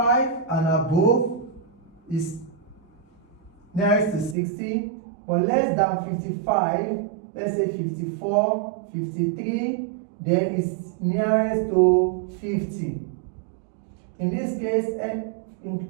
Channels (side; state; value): left; drops out; at 4.4 s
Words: and above is nearest to 60, but less than 55, let's say 54, 53, then is nearest to 50. In this case,